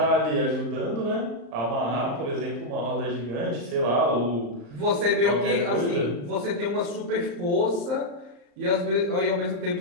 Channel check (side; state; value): left; late; 35 ms